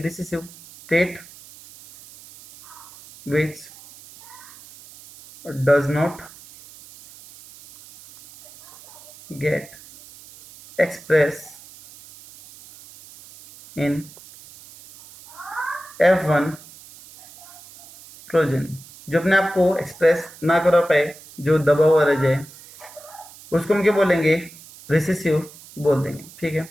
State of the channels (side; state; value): right; noise; hiss, 20 dB below the sound